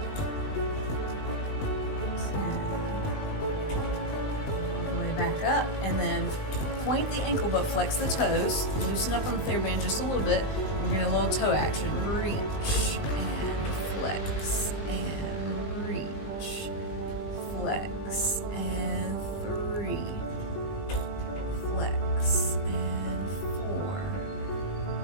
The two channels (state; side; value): late; right; 20 ms